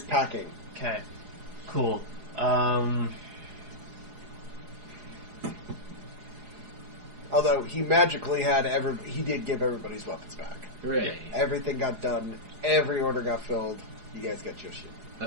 packing. Okay. Cool. Although he magically had he did give everybody's weapons back. Hooray. Everything got done. Every order got filled. You guys got your shit.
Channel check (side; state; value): left; late; 4.8 ms